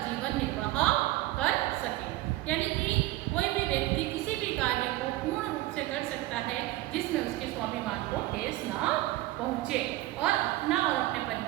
जीवन निर्वाह कर सके। यानी कि कोई भी व्यक्ति किसी भी कार्य को पूर्ण रूप से कर सकता है जिसमें उसके स्वाभिमान को ठेस ना पहुँचे और अपना और अपने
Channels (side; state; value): left; quieter; 17.5 dB